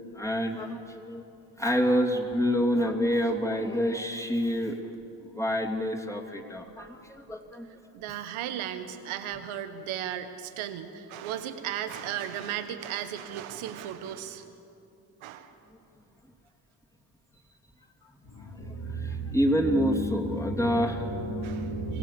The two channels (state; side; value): normal; both; correlation 0.65